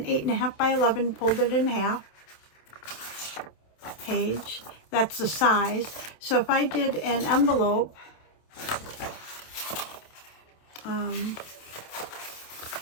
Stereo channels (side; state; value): right; late; 27 ms